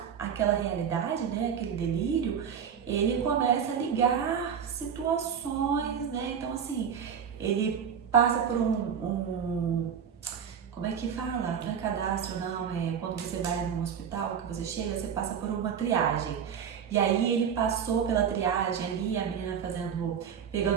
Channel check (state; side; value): quieter; left; 7.7 dB